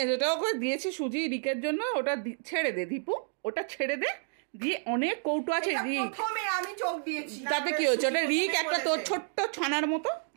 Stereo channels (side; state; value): left; silent; 56 dB below the other